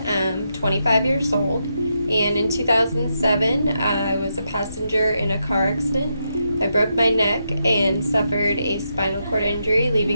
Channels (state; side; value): inverted; both; correlation -0.83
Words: I'm 25 years old, and in 2007, I was a passenger in a car accident. I broke my neck and suffered a spinal cord injury,